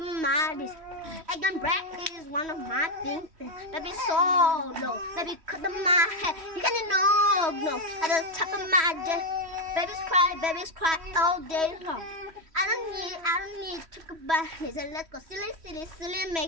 this. Egg and bread is one of my things. Baby solo. Baby cut my hair. You can no. At the top of my day. Babies cry all day long. I don't need to talk about this. Let's go silly,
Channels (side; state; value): left; late; 3.1 ms